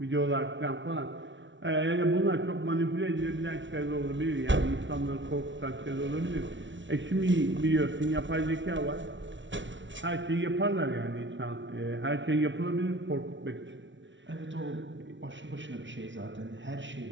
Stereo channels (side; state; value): left; late; 0.55 ms